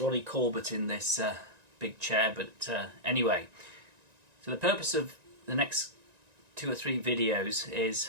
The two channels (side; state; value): left; late; 1.9 ms